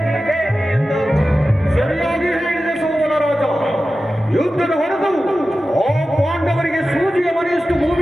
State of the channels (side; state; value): both; normal; correlation 0.94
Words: ಎಂದು ಸರಿಯಾಗಿ ಹೇಳಿದ ಸೋಮನ ರಾಜ. ಯುದ್ಧದ ಹೊರತು ಆ ಪಾಂಡವರಿಗೆ ಸೂಜಿಯ ಮನೆಯಷ್ಟು